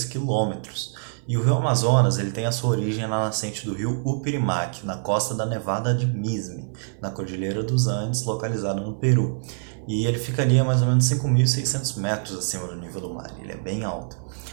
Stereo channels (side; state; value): left; silent; 58 dB below the other